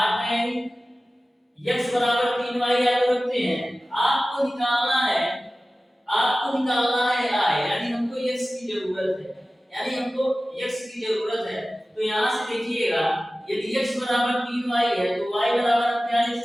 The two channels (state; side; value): normal; both; correlation 0.96